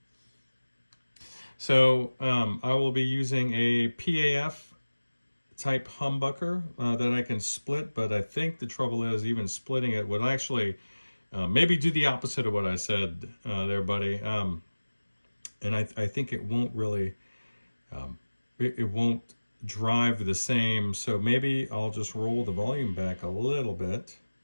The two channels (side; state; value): both; inverted; correlation -1.00